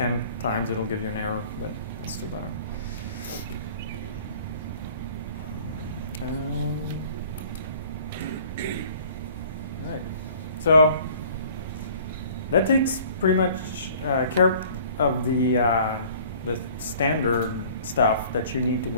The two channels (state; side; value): inverted; both; correlation -0.51